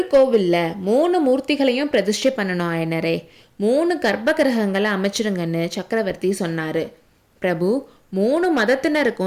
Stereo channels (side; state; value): both; identical; correlation 1.00